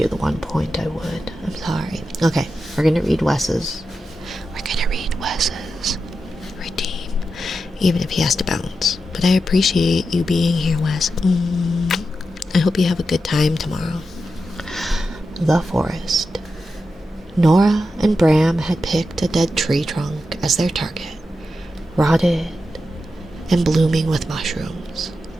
the 1 point, I would. I'm sorry. Okay, we're gonna read Wes's. Redeem. Even if he has to bounce. But I appreciate you being here, Wes. I hope you have a good time tomorrow. The forest. Nora and Bram had picked a dead tree trunk as their target, rotted and blooming with mushrooms.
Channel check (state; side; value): normal; both; correlation 0.89